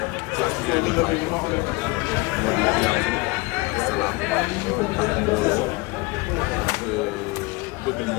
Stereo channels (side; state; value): right; quieter; 24.1 dB